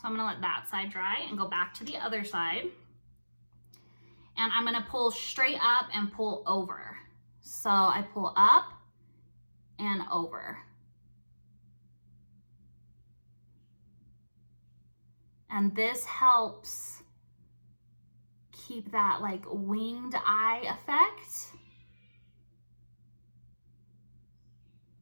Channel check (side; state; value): both; inverted; correlation -1.00